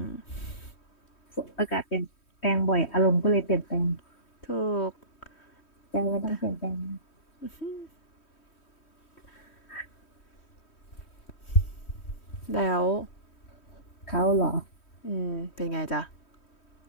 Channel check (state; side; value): late; right; 3.1 ms